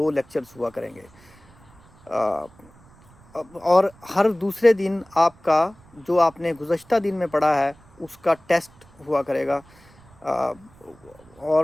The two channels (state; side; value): noise; right; rumble, 27 dB below the sound